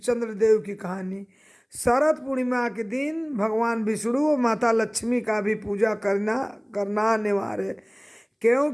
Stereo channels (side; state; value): both; identical; correlation 1.00